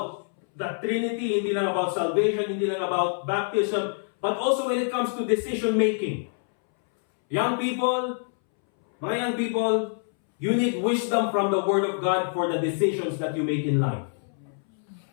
the Trinity, hindi lang about salvation, hindi lang about baptism, but also when it comes to decision making. Young people, mga young people, you need wisdom from the Word of God for the decisions that you make in life.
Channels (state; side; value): silent; right; 61 dB below the other